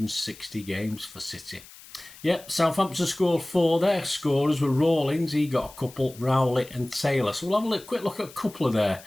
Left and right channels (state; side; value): noise; left; hiss, 20 dB below the sound